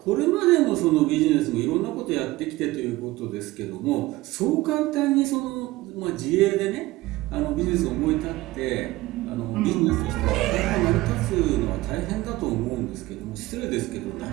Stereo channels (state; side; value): quieter; left; 18.7 dB